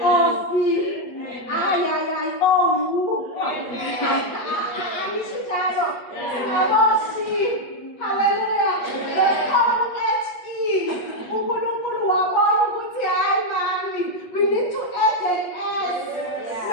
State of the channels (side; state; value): right; late; 8.4 ms